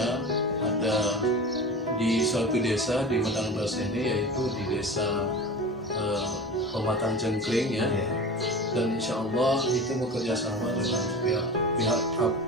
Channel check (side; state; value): both; normal; correlation 0.32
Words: ada di suatu desa di Medang Beras ini, yaitu di desa Pematang Cengkring, ya. Dan insya Allah itu bekerja sama dengan pihak